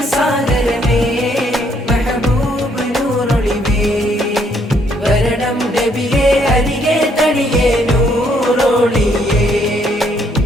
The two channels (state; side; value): normal; both; correlation 0.69